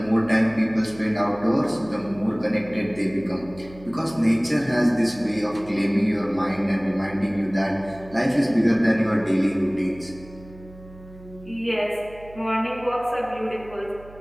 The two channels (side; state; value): right; noise; hum, 20 dB below the sound